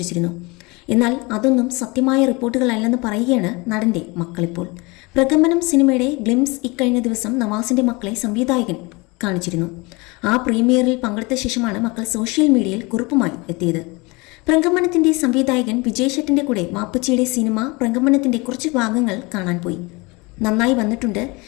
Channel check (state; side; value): quieter; right; 25.9 dB